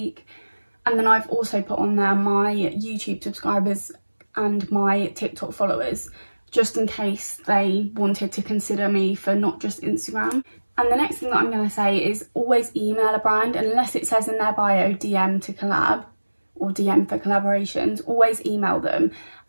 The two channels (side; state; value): both; inverted; correlation -1.00